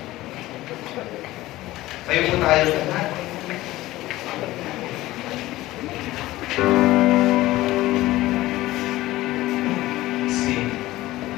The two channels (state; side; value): quieter; right; 17.1 dB